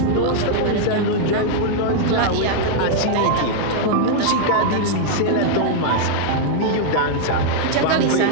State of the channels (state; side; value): different; both; correlation -0.01